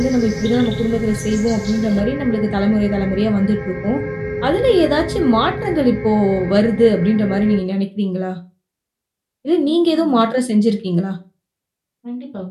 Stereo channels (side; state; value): both; identical; correlation 1.00